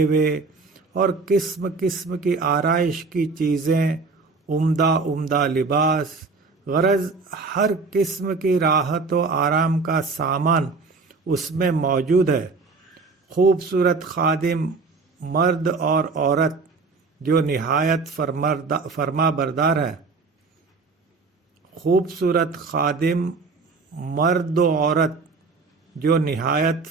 اور قسم قسم کی آرائش کی چیزیں، عمدہ عمدہ لباس، غرض ہر قسم کی راحت و آرام کا سامان اس میں موجود ہے. خوبصورت خادم مرد اور عورت جو نہایت فرما بردار ہیں. خوبصورت خادم مرد و عورت جو نہایت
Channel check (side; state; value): left; quieter; 4.2 dB